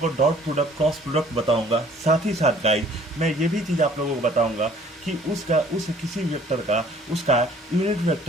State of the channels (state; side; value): normal; both; correlation 0.55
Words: co dot product, cross product बताऊंगा। साथ ही साथ गाइस मैं ये भी चीज़ आप लोगों को बताऊंगा कि उस किसी वेक्टर का उसका यूनिट